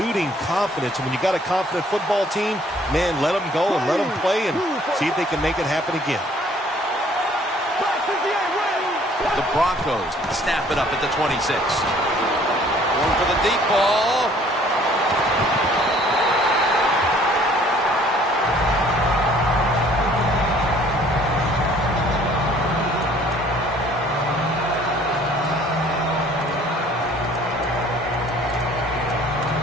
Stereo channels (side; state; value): both; normal; correlation 0.57